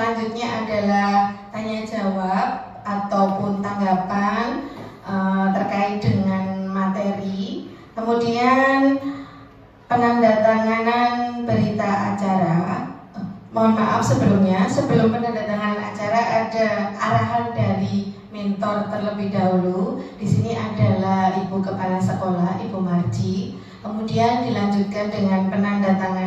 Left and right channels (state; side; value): identical; both; correlation 1.00